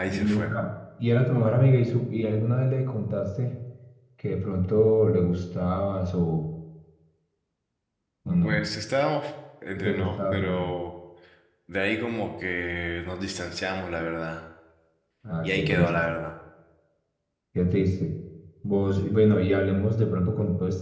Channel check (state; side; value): identical; both; correlation 1.00